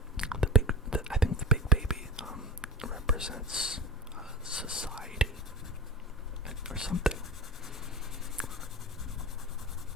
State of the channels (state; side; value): normal; both; correlation 0.31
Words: I think the big baby represents society or something.